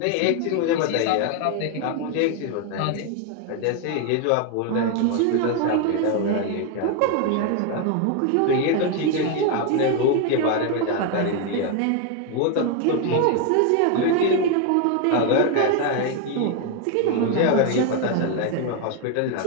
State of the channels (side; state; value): both; different; correlation 0.01